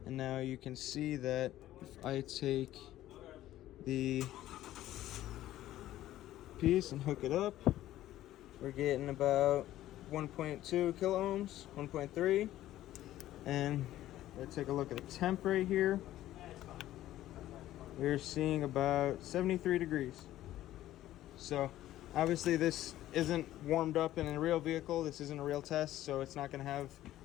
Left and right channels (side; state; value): right; quieter; 14.0 dB